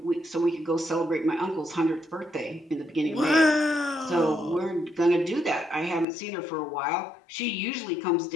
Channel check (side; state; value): right; drops out; at 6.1 s